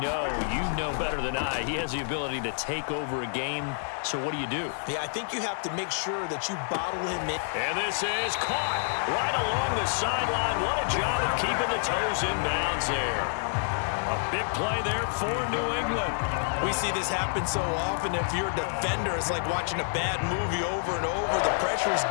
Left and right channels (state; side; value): silent; right; digital silence